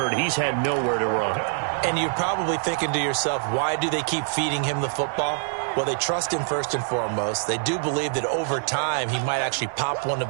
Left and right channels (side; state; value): left; silent; digital silence